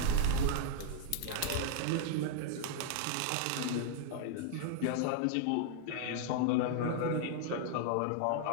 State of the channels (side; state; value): both; different; correlation -0.01